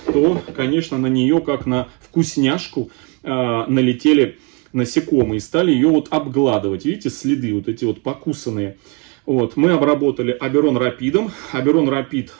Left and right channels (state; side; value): quieter; left; 32.3 dB